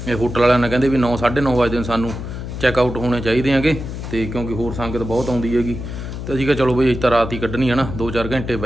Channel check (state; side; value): noise; left; hum, 7 dB below the sound